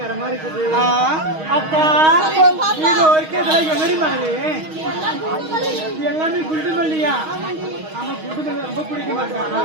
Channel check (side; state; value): left; late; 6.4 ms